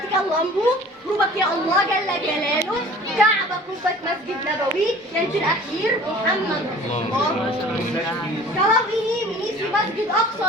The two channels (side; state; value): both; normal; correlation 0.47